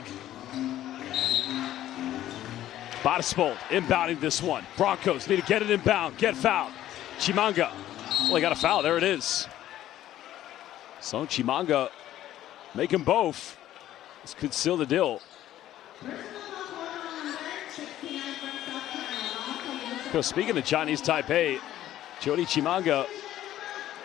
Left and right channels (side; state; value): right; quieter; 13.0 dB